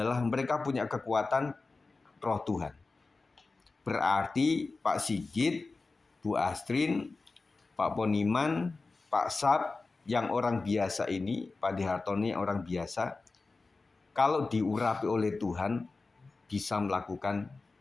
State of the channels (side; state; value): right; quieter; 3.7 dB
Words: mereka punya kekuatan Roh Tuhan. Berarti Pak Sigit, Bu Astrin, Pak Poniman, Pak Sab, yang orang biasa ini, Pak Dihartoni yang orang biasa, kalau diurapi oleh Tuhan, bisa melakukan